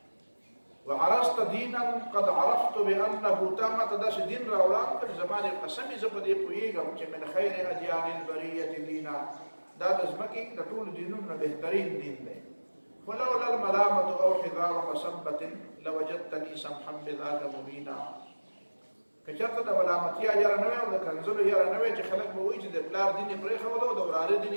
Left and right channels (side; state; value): both; inverted; correlation -1.00